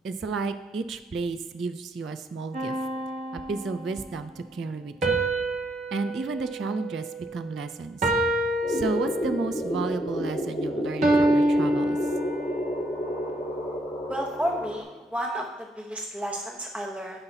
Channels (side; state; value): both; normal; correlation 0.73